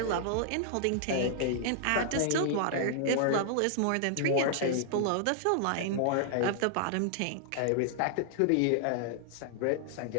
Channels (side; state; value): both; different; correlation -0.01